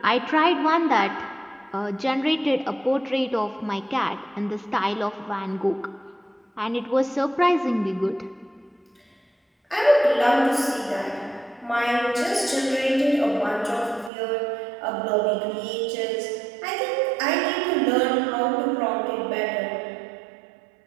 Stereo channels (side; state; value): left; drops out; at 14.1 s